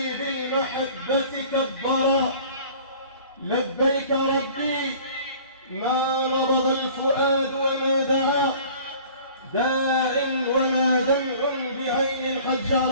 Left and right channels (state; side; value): inverted; both; correlation -0.48